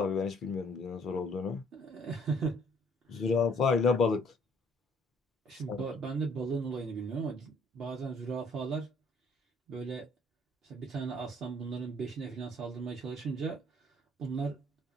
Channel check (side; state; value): both; normal; correlation 0.61